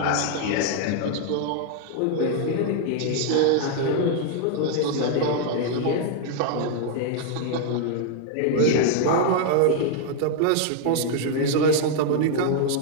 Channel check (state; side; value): different; both; correlation 0.00